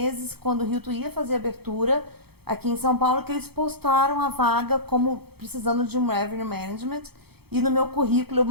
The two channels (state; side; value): late; left; 0.96 ms